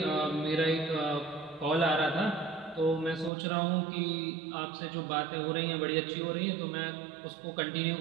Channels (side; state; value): left; drops out; at 3.3 s